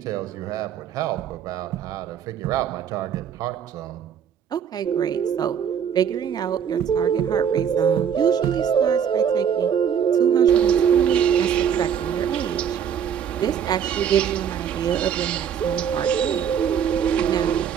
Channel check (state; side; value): quieter; left; 8.2 dB